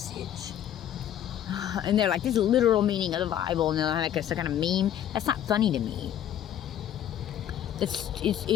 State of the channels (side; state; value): right; quieter; 10.6 dB